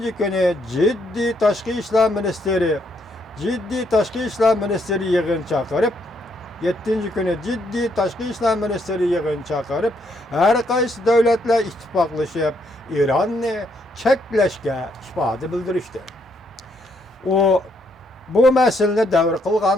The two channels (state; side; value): normal; both; correlation 0.73